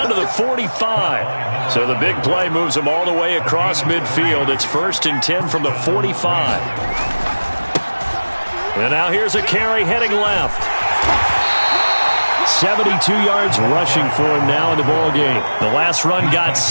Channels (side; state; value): both; inverted; correlation -1.00